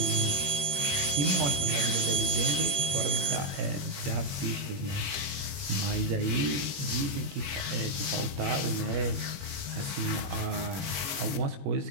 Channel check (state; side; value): late; left; 21 ms